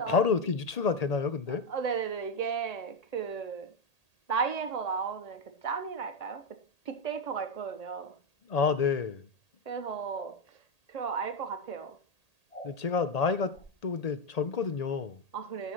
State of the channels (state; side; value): late; right; 1.8 ms